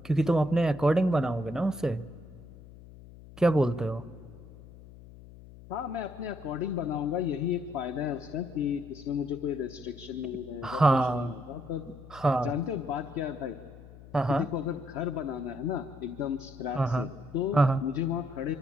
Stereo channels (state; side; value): noise; left; hum, 18 dB below the sound